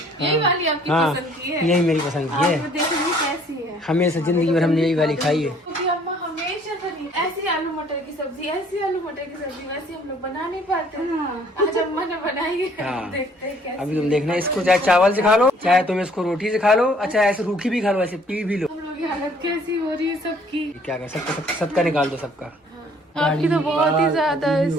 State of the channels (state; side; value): normal; both; correlation 0.59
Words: यही वाली आपकी हाँ, पसंद की है? यही मेरी पसंद की है। देखेंगे कैसी है। हमेशा जिंदगी भर हमने यही वाली खाई है। क्योंकि अम्मा हमेशा बनी ऐसी आलू मटर की सब्जी, वैसे हम लोग बना नहीं पाते। आज अम्मा ने बनाई है। हाँ। देखते हैं कैसी। अभी तुम देखना, इसको चाहे चावल से खा लो, चाहे तुम इसको रोटी से खा लो, अच्छा ऐसे रूखी भी खा लो, ऐसे पी भी लो। हम लोग की हालत कैसी हो रही है सबकी। क्या कर सबका निकाल दो सबका। आपकी तो बहुत ही ज्यादा